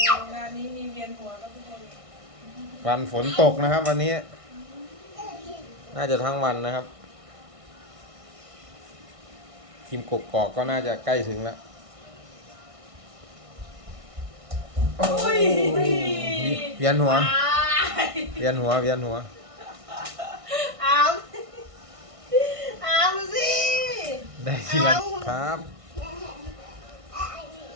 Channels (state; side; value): late; left; 1.6 ms